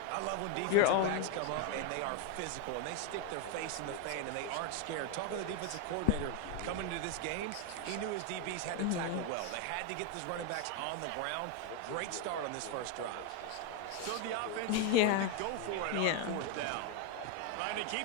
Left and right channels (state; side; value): different; both; correlation 0.01